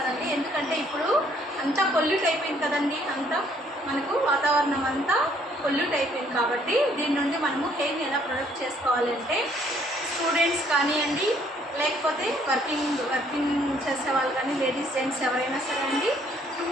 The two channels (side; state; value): both; normal; correlation 0.64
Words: ఎందుకంటే ఇప్పుడు అంతా పొల్యూట్ అయిపోయింది కదండి, అంతా మనకు వాతావరణం అంతా పొల్యూట్ అయిపోయింది. కాబట్టి దీని నుండి మనము హెయిర్ని ఎలా ప్రొటెక్ట్ చేసుకోవాలి అంటే స్టూడెంట్స్ కానివ్వండి, లేకపోతే వర్కింగ్ చేసే వాళ్ళు కానీ, లేడీస్ జెంట్స్ ఎవరైనా సరే అండి,